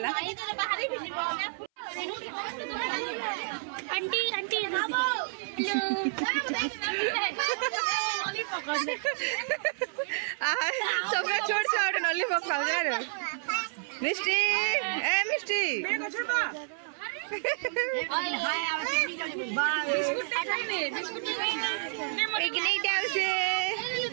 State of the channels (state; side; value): silent; left; 58 dB below the other